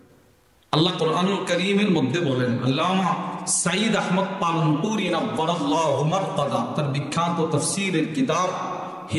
আল্লাহ কোরআনুল কারীমের মধ্যে বলেন, আল্লামা সাইদ আহমদ পালনপুরি নব্বরাল্লাহু মারকাদা তার বিখ্যাত তাফসীরের কিতাব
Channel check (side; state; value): both; identical; correlation 1.00